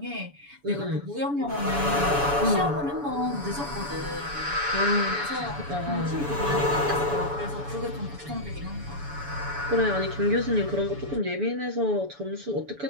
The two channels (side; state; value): left; late; 7.0 ms